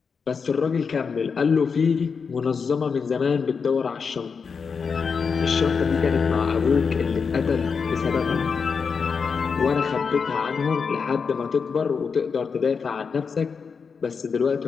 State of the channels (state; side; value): quieter; right; 5.6 dB